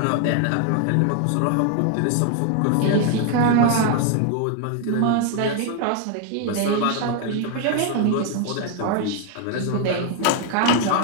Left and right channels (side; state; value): both; different; correlation 0.01